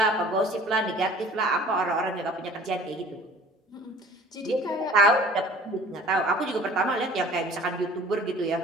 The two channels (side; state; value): both; normal; correlation 0.48